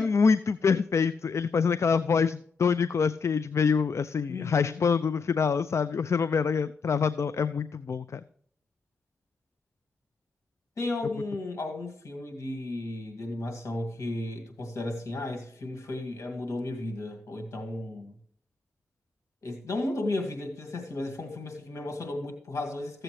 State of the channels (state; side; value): quieter; right; 4.7 dB